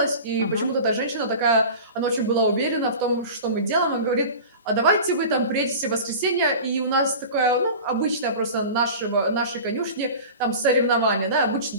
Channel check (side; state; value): both; inverted; correlation -0.35